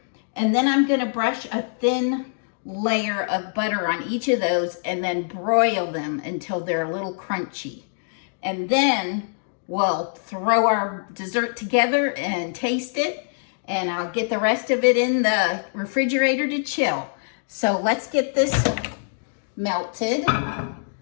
and then I'm gonna brush a thin layer of butter on each of those and then broil them until they're a little crunchy. And then we'll throw our dessert together and taste it. And I'll get the rest of it in the refrigerator to chill. So let's get this melted.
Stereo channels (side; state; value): right; silent; digital silence